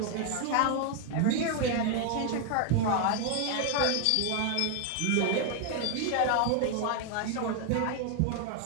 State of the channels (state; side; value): different; both; correlation 0.01